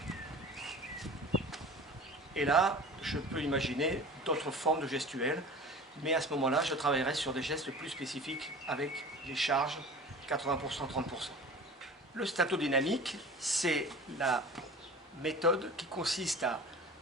Et là, je peux imaginer d'autres formes de gestuelles, mais à ce moment-là, je travaillerai sur des gestes plus spécifiques avec les charges 80%, 30%. Le statodynamique, c'est la méthode qui consiste à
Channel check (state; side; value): normal; both; correlation 0.38